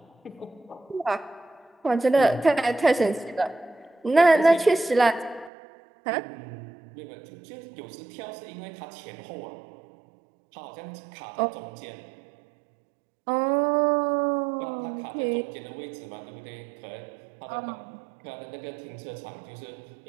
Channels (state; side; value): drops out; left; at 5.5 s